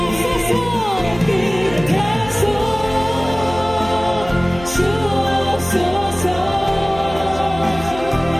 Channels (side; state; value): left; noise; hum, 14 dB below the sound